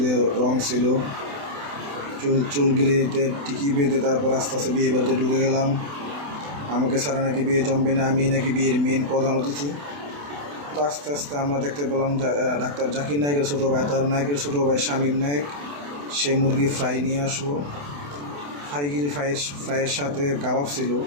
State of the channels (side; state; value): left; late; 28 ms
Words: রং ছিল, চুলগুলিতে টিকি বেঁধে তারপর আস্তে আস্তে বিয়ে বাড়িতে ঢুকে গেলাম। আমাকে ছাড়া নাকি বিয়ে জমবে না, আমি নাকি বিয়ের মেন প্রধান অতিথি। তো আস্তে আস্তে আমরা দেখতে পেলাম ডাক্তার জাকির নায়কের ছোটো ভাই, তার নায়কের ছোটো ভাই শামীম নায়ক, সে মুরগি ফ্রাই নিয়ে আসলো। ফ্রাইয়ের সাথে কাবাব ছিল।